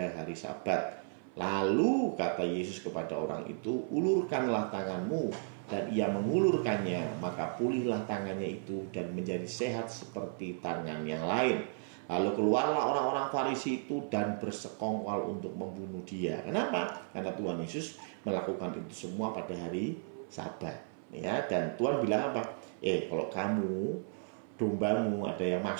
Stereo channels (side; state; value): left; silent; 55 dB below the other